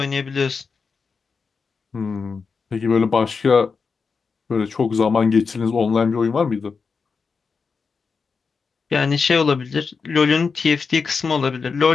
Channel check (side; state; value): right; quieter; 5.1 dB